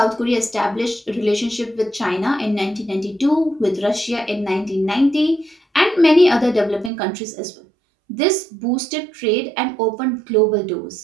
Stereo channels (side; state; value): left; drops out; at 6.9 s